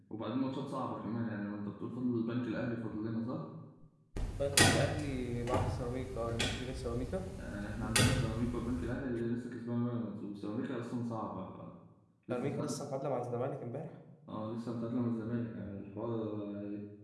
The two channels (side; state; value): both; identical; correlation 1.00